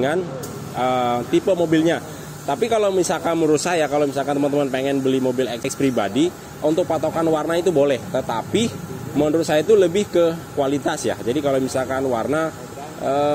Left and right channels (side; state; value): both; identical; correlation 1.00